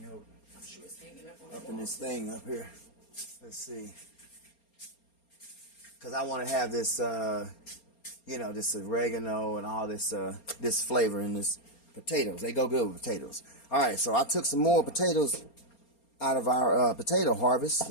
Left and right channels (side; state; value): right; late; 4.3 ms